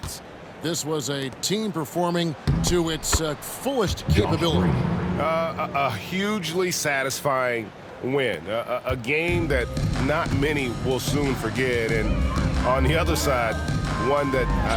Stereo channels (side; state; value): both; identical; correlation 1.00